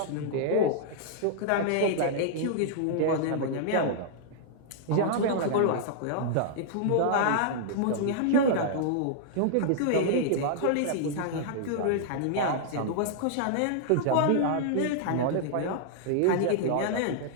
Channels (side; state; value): both; different; correlation -0.01